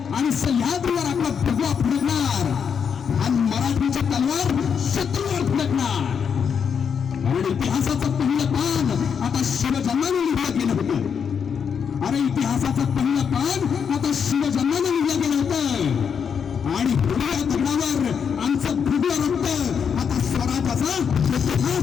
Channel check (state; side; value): quieter; right; 7.0 dB